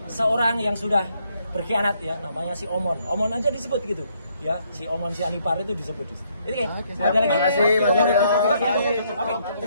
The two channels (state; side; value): inverted; both; correlation -0.71